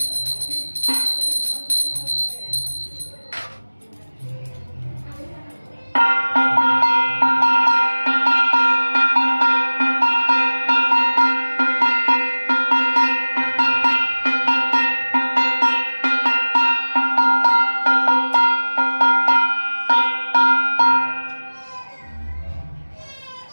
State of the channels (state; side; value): inverted; both; correlation -1.00